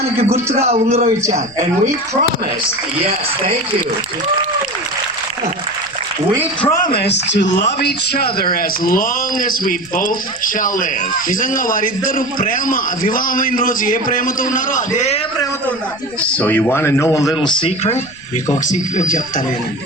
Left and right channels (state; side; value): noise; left; rumble, 26 dB below the sound